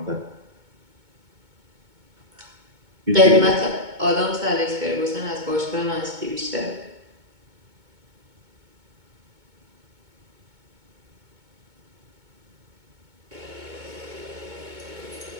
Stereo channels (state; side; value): late; left; 2.2 ms